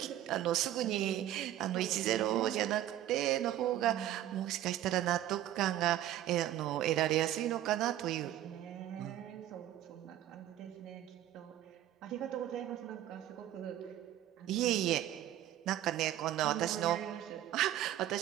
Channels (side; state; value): left; quieter; 12.7 dB